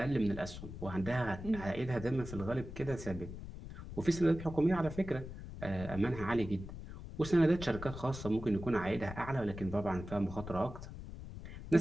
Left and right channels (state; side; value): noise; left; rumble, 11 dB below the sound